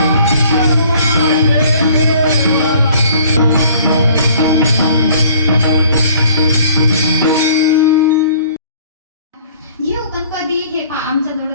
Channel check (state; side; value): inverted; both; correlation -0.55